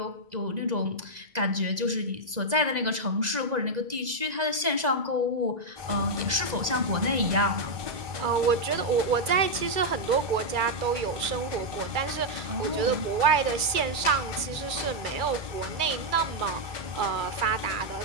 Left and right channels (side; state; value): left; late; 2.3 ms